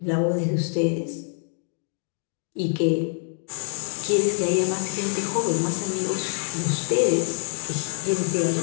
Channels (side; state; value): right; silent; digital silence